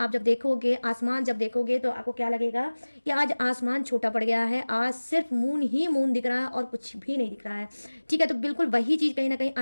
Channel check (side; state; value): both; inverted; correlation -1.00